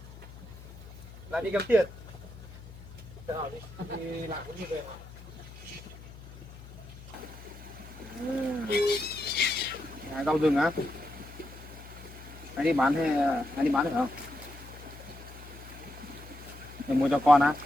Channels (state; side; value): noise; left; hum, 16 dB below the sound